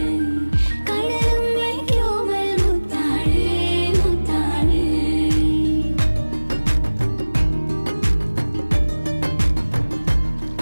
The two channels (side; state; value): both; inverted; correlation -1.00